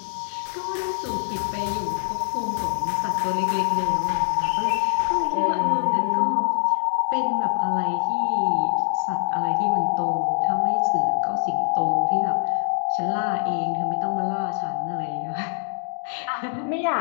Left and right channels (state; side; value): silent; right; 63 dB below the other